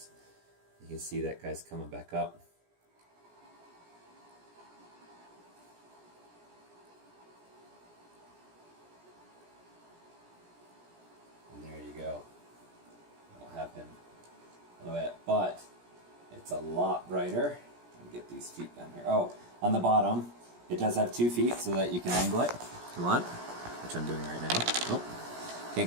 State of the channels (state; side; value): late; left; 17 ms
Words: You can see that guy's coming back up. And there you go. I'll have him a little bit, but it's a lot brighter. Get these feet down here. Oh, on the bottom, it does have 2 feet so that you can angle it if you want, which I'm doing right now. Oh,